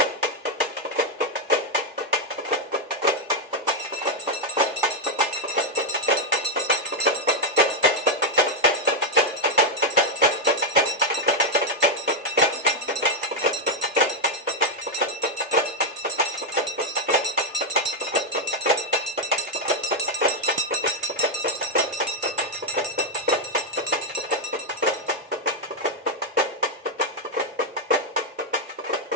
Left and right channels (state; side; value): normal; both; correlation 0.00